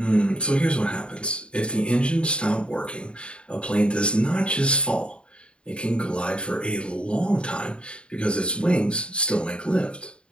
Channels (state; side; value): late; right; 0.054 ms